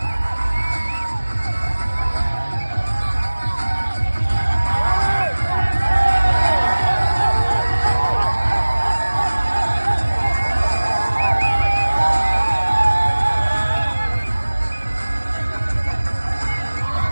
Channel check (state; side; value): inverted; both; correlation -1.00